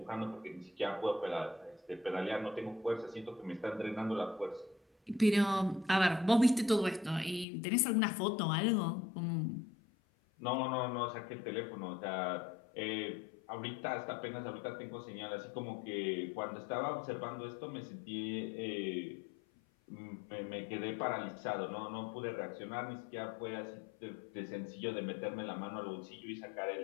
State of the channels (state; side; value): drops out; right; at 7.5 s